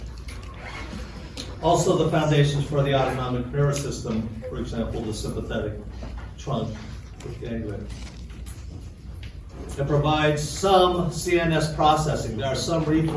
Also the foundations for the autonomic nervous system, for example, the sympathetic trunk with ganglia. It provides some CNS processing. There are some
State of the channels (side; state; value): both; identical; correlation 1.00